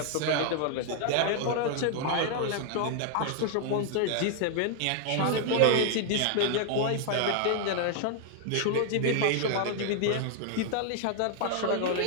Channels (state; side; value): different; both; correlation 0.00